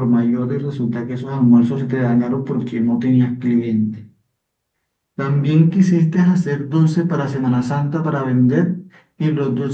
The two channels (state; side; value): identical; both; correlation 1.00